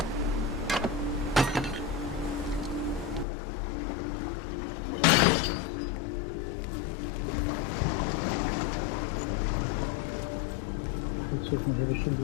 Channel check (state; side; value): drops out; right; at 3.2 s